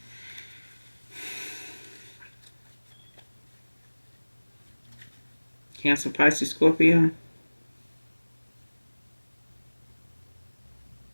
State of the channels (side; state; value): both; inverted; correlation -1.00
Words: Cancer, Pisces, Scorpio.